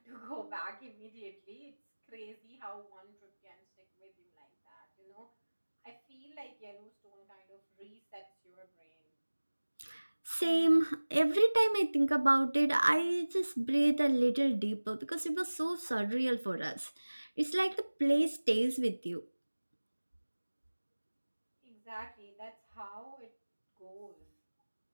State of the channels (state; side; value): inverted; both; correlation -1.00